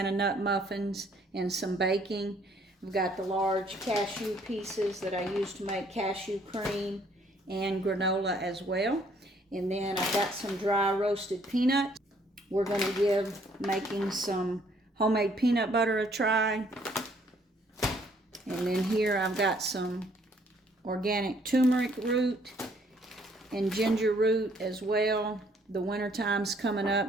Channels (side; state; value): both; normal; correlation 0.64